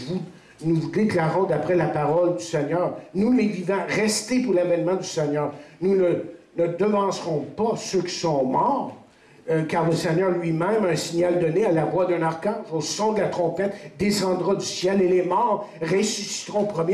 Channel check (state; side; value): identical; both; correlation 1.00